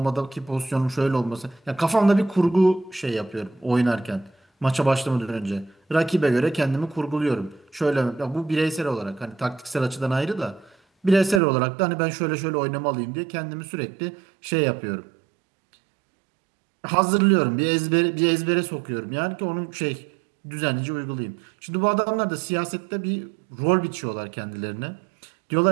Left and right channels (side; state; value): left; drops out; at 11.4 s